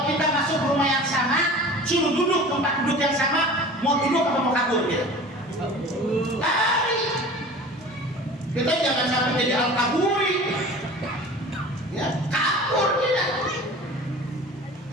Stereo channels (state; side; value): normal; both; correlation 0.40